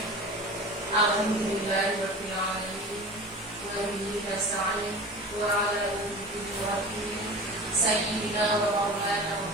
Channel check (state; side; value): normal; both; correlation 0.35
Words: Alhamdulillahirabbil alamin. Wa bihi nasta'in wa 'ala alihi sayyidina wa maulana